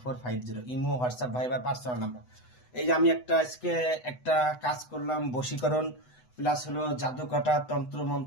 Imo, WhatsApp, Viber personal number. এই যে আমি আজকে একটা কাজ করলাম, বশীকরণ প্লাস হলো জাদু কাটা, তন্ত্র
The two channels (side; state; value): right; late; 8.0 ms